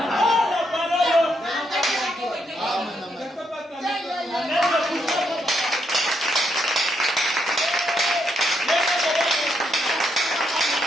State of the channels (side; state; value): both; normal; correlation 0.78